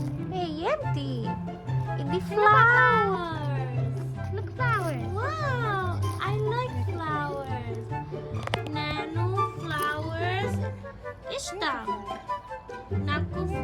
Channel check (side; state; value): both; identical; correlation 1.00